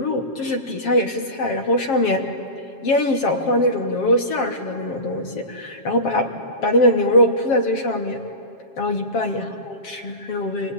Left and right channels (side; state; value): right; late; 7.4 ms